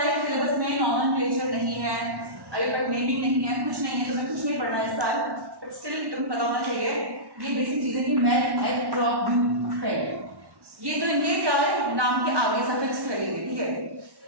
सिलेबस में नॉमेनक्लेचर नहीं है, अभी तक नेमिंग नहीं है, कुछ नहीं है, तो मैं कुछ नहीं पढ़ना इस साल, बट स्टिल तुम्हें पता होना चाहिए ये बेसिक चीजें कि math, egg, drop, but, friend, ये तो इनके क्या है नाम के आगे सफिक्स लगेंगे, ठीक है।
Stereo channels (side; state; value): left; late; 1.1 ms